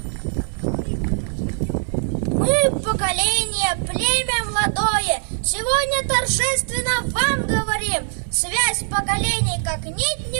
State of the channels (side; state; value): left; silent; digital silence